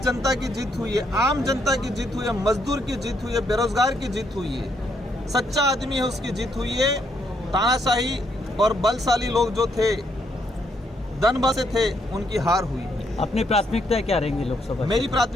जनता की जीत हुई है, आम जनता की जीत हुई है, मजदूर की जीत हुई है, बेरोजगार की जीत हुई है, सच्चा आदमी है उसकी जीत हुई है। तानाशाही और बलशाली लोग जो थे, धनबसे थे, उनकी हार हुई। अपनी प्राथमिकता क्या रहेंगी लोकसभा? मेरी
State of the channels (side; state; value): both; normal; correlation 0.74